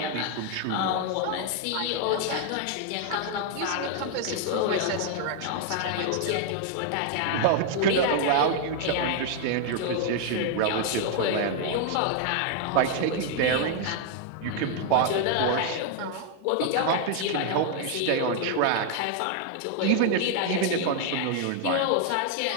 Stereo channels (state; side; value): different; both; correlation 0.00